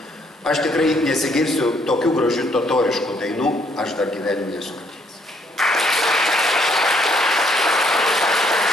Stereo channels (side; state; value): both; normal; correlation 0.68